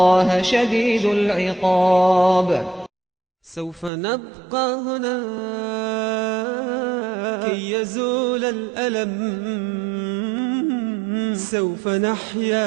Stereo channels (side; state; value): left; drops out; at 3.9 s